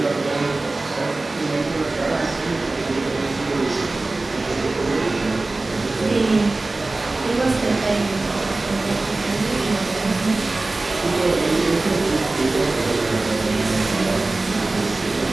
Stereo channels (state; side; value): quieter; left; 3.2 dB